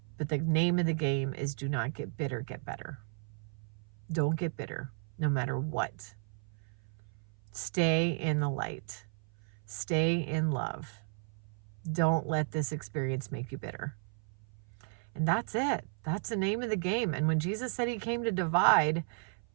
But the name of the game is do not get bitter, get better. Don't get bitter, no matter what. Stay in the light. Stay in love. Don't let this experience make you bitter. And that's it. That's the name of the game. And when Jesus said he came to divide,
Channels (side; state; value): left; silent; 55 dB below the other